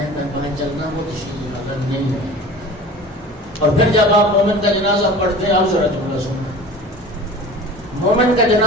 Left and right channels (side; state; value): both; normal; correlation 0.40